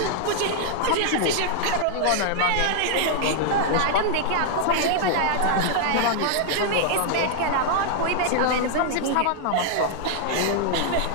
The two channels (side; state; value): both; different; correlation 0.00